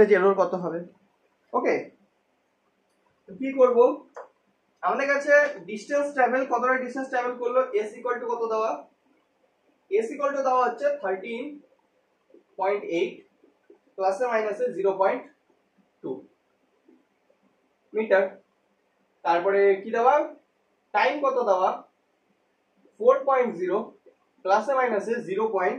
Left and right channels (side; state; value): both; identical; correlation 1.00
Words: এরর কত হবে, ওকে। কি করব, আমাদের কাছে ডিস্টেন্স ট্রাভেল, কতটা ডিস্টেন্স ট্রাভেল করলো, এস ইকুয়াল টু কত দেওয়া, এস ইকুয়াল টু দেওয়া হচ্ছে 13.8 প্লাসে মাইনাসে 0.2 মিটার, তারপরে কি দেওয়া, টাইম কত দেওয়া 4.0 প্লাসে মাইনাসে